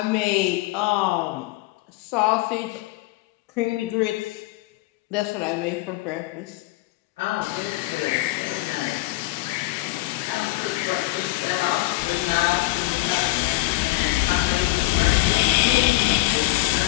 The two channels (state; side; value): quieter; right; 19.8 dB